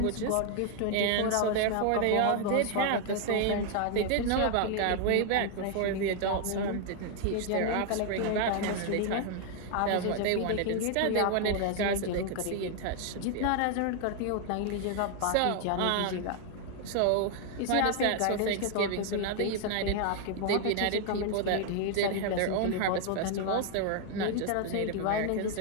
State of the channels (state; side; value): different; both; correlation 0.00